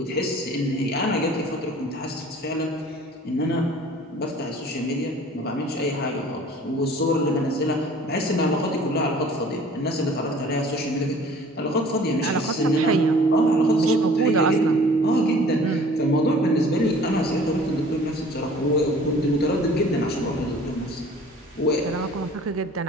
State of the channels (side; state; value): both; normal; correlation 0.49